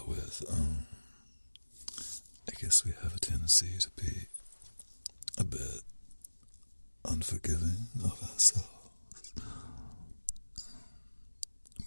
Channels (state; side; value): inverted; both; correlation -1.00